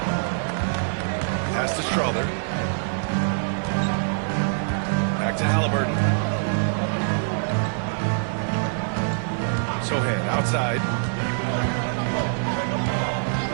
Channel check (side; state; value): left; silent; digital silence